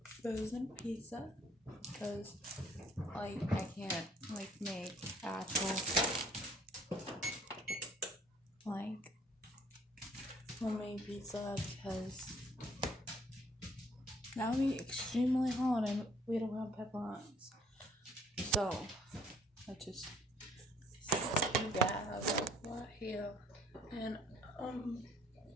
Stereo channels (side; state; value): both; normal; correlation 0.60